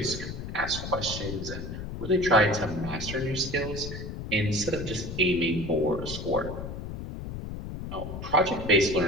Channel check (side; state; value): left; noise; rumble, 7 dB below the sound